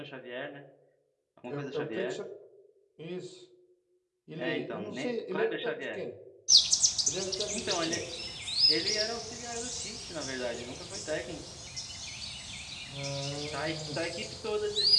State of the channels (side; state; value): both; identical; correlation 1.00